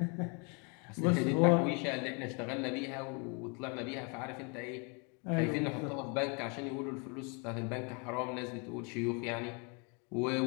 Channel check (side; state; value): right; quieter; 34.1 dB